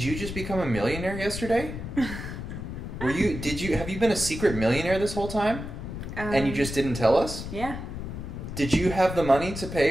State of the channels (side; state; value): left; noise; rumble, 7 dB below the sound